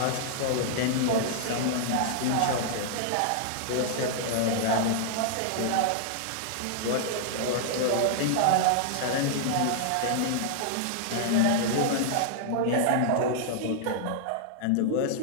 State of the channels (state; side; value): different; both; correlation -0.01